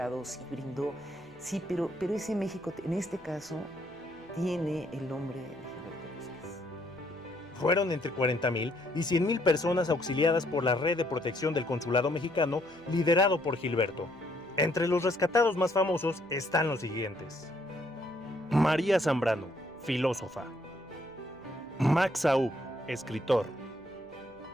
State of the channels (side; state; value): right; noise; hum, 24 dB below the sound